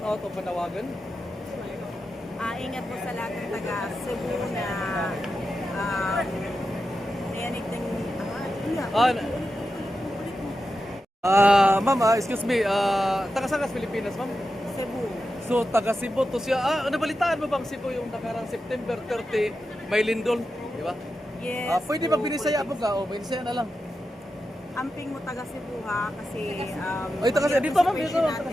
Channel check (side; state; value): both; normal; correlation 0.90